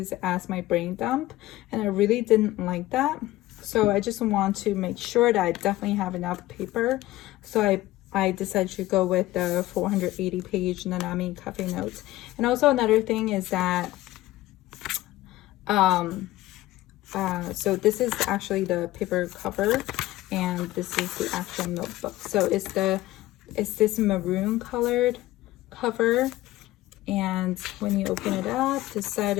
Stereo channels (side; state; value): right; quieter; 16.7 dB